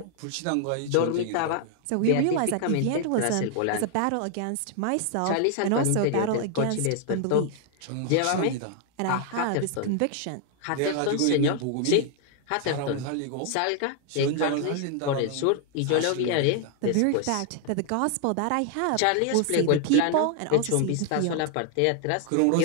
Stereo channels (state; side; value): different; both; correlation 0.00